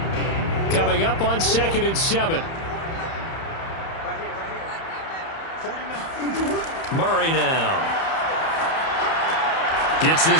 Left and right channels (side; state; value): right; late; 30 ms